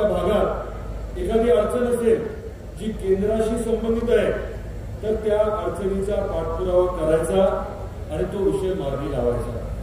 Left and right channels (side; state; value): both; identical; correlation 1.00